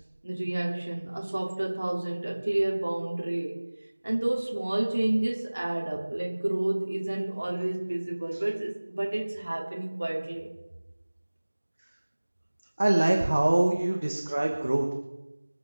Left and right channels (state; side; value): inverted; both; correlation -1.00